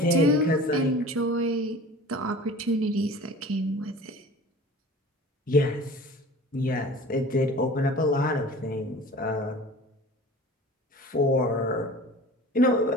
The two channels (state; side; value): normal; both; correlation 0.41